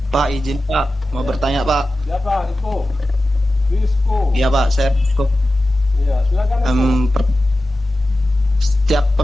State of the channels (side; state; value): both; normal; correlation 0.94